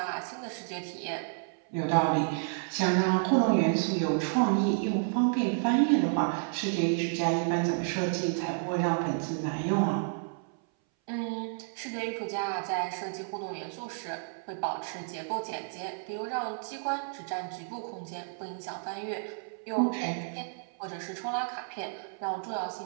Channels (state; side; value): silent; left; 57 dB below the other